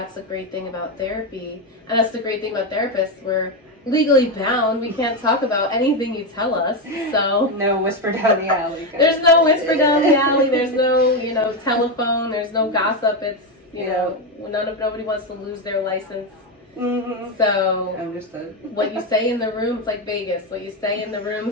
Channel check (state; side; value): normal; both; correlation 0.10